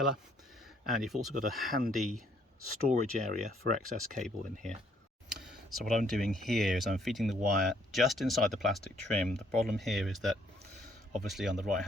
and you've also got a handy storage area for excess cable in here. So what I'm doing here is I'm feeding the wire just inside the plastic trim. The problem here is that obviously on the right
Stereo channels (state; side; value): normal; both; correlation 0.66